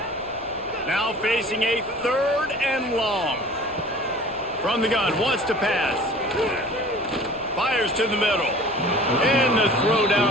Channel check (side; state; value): left; noise; rumble, 24 dB below the sound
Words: Now facing a 3rd and long. From the gun, wants to pass. Fires to the middle. And the throw